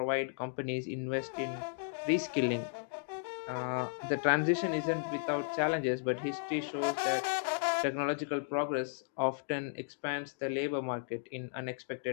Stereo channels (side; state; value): right; silent; digital silence